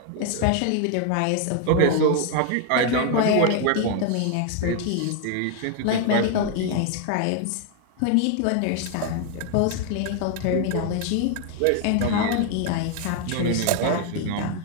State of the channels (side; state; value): both; different; correlation 0.00